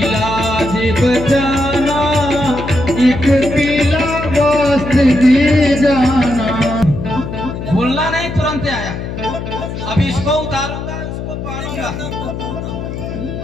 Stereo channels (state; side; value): noise; left; hum, 7 dB below the sound